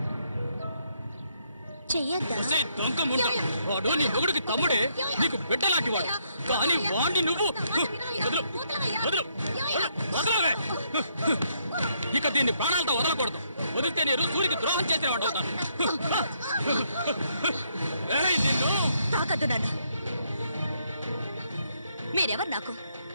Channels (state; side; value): inverted; both; correlation -0.73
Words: చెయ్యొద్దా? ఒసేయ్ దొంగ ముండ, వాడు నీ మొగుడికి తమ్ముడే, నీకు బిడ్డలాంటి వాడు. కానీ వాణ్ణి నువ్వు వదలు, వదలు, వదలవే. ఇక దీన్ని ప్రాణాలతో వదలకూడదు. వదిలితే నేను సూరికి ద్రోహం చేసిన వాడు అవుతాను. నిన్ను తాకద్దు నన్ను. మీరెవరు నాకు?